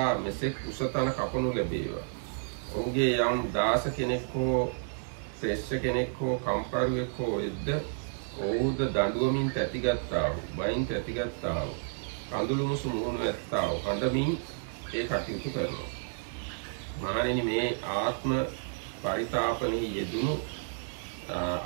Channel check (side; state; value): left; silent; digital silence